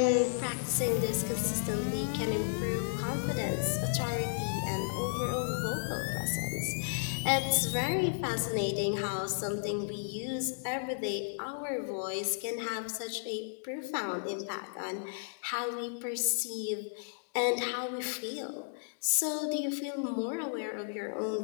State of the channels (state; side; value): silent; right; digital silence